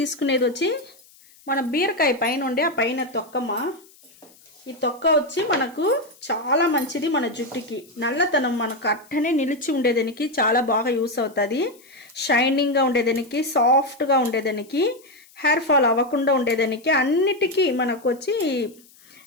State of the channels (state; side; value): noise; left; hiss, 27 dB below the sound